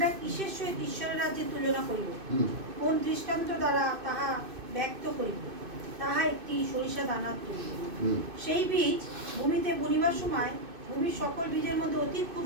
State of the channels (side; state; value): left; late; 2.6 ms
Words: কিসের সহিত ঈশ্বরের রাজ্যে তুলনা করিব? কোন দৃষ্টান্ত দ্বারা তাহা ব্যক্ত করিব? তাহা একটি সরিষা দানার তুল্য। সেই বীজ ভূমিতে বুনিবার সময় ভূমির সকল বীজের মধ্যে অতি